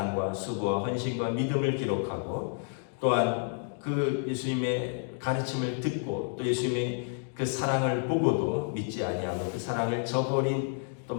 수고와 헌신과 믿음을 기록하고 또한 그 예수님의 가르침을 듣고 또 예수님의 그 사랑을 보고도 믿지 아니하고 그 사랑을 저버린 또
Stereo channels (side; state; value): right; silent; 58 dB below the other